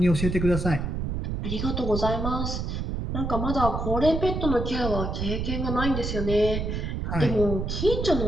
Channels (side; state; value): right; noise; rumble, 2 dB below the sound